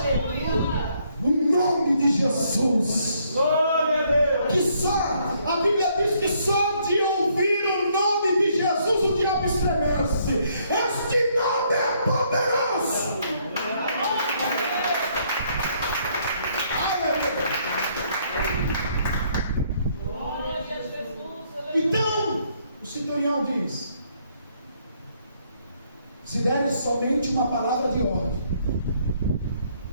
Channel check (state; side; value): inverted; both; correlation -0.69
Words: O nome de Jesus. Glória a Deus. Que só, a Bíblia diz que só de ouvir o nome de Jesus o diabo estremece. Este nome é poderoso. Aleluia. Glória a Jesus. Então, o centurião diz: se deres somente uma palavra de ordem,